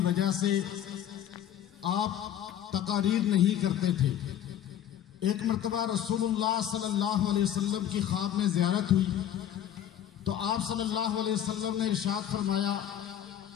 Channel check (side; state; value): right; quieter; 10.6 dB